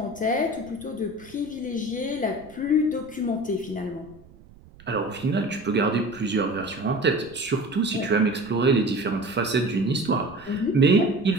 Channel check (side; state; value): right; noise; rumble, 23 dB below the sound